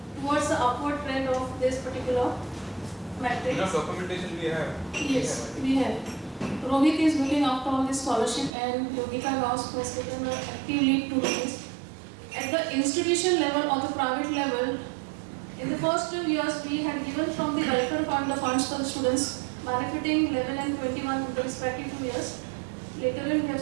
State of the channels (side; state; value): left; drops out; at 8.5 s